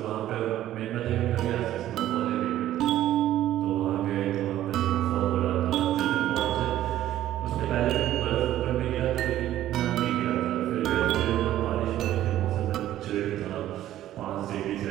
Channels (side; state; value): left; quieter; 13.1 dB